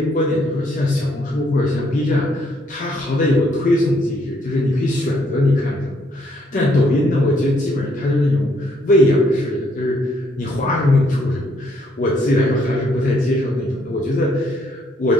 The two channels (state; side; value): normal; both; correlation 0.69